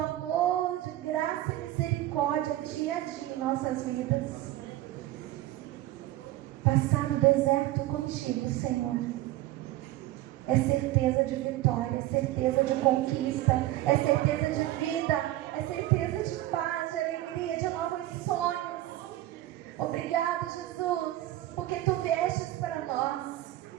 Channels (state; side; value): quieter; left; 15.4 dB